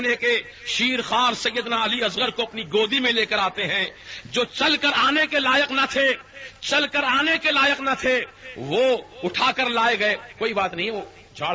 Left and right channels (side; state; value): both; identical; correlation 1.00